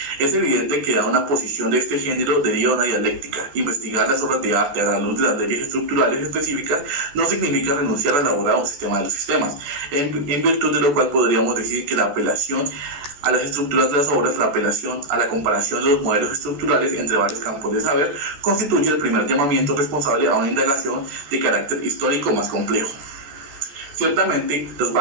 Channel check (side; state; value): left; late; 14 ms